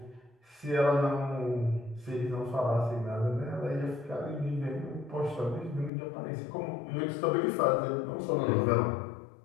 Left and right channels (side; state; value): right; drops out; at 5.9 s